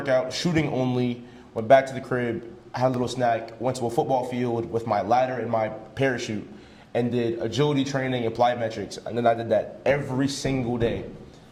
shooting only, went back to the crib, had a little snack, went to a football field with my ladder and my parachute, and did agility training and plyometrics. And then I did that every single day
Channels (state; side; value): identical; both; correlation 1.00